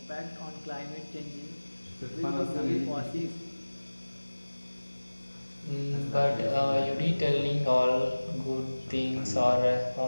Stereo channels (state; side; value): inverted; both; correlation -1.00